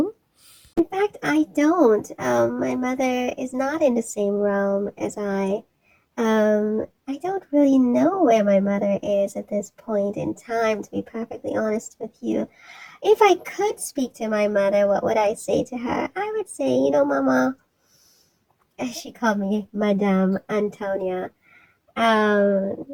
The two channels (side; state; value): both; identical; correlation 1.00